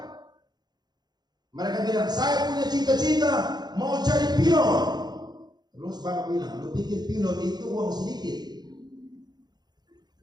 Mereka bilang, saya punya cita-cita mau jadi pilot. Terus bapak bilang, lu pikir pilot itu uang sedikit?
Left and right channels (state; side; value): late; left; 0.20 ms